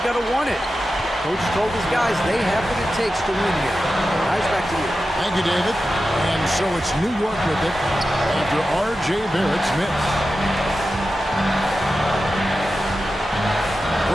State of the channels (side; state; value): both; normal; correlation 0.92